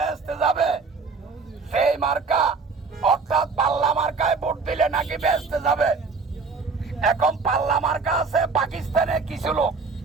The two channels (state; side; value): quieter; left; 4.6 dB